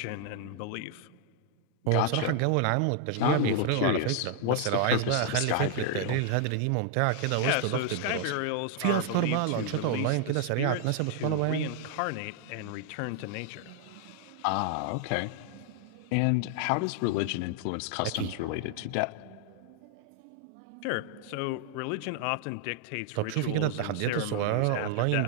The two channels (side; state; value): both; different; correlation 0.00